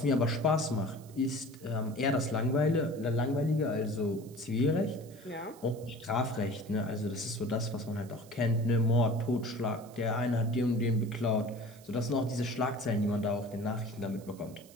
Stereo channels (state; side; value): noise; right; hiss, 24 dB below the sound